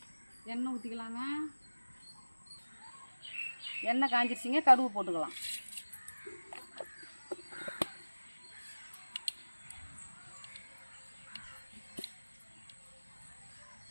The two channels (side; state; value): both; inverted; correlation -1.00